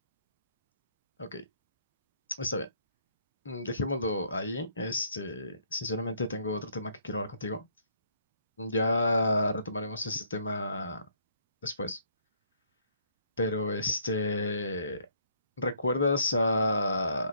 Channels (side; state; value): both; inverted; correlation -0.66